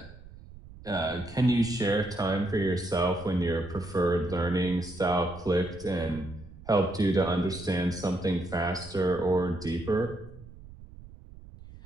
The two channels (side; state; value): right; noise; rumble, 18 dB below the sound